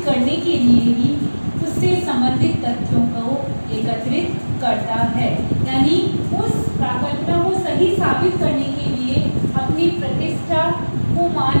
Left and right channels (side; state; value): both; inverted; correlation -1.00